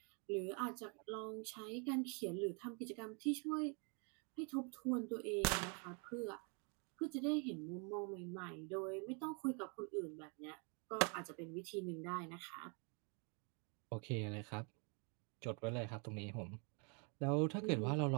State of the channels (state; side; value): quieter; left; 36.0 dB